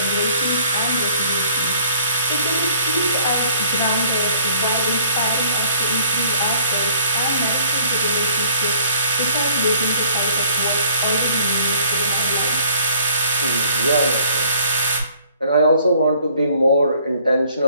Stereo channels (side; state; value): both; inverted; correlation -0.59